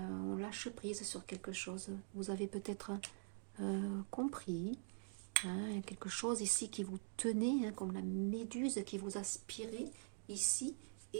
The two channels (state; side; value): silent; left; digital silence